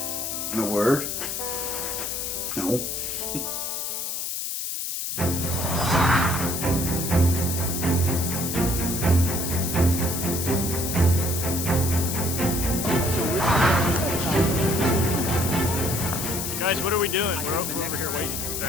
The word? No. Guys, what are we doing? We're over here waiting.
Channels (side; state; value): left; noise; hiss, 3 dB below the sound